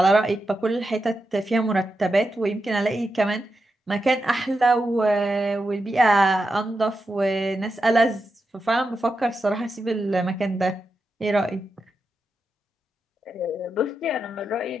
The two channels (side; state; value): both; normal; correlation 0.88